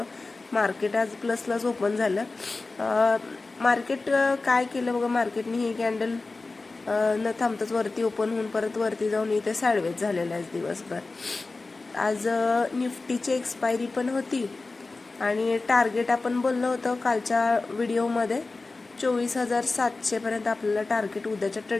मार्केट आज प्लसलाच ओपन झालं. मार्केट काय केलं बघा, मार्केटने ही कॅन्डल न थांबताच वरती ओपन होऊन परत वरती जाऊन इथे साइडवेज झालेलं आहे दिवसभर. आज निफ्टीची एक्सपायरी पण होती आणि टार्गेट आपण बोललो होतो कालच्या व्हिडिओमध्ये 24,700 पर्यंत आपल्याला टार्गेट उद्याच्या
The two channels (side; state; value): right; quieter; 3.6 dB